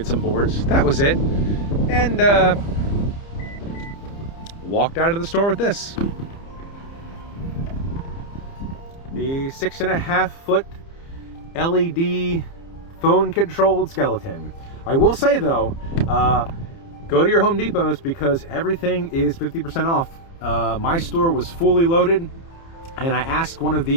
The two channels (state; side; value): late; right; 30 ms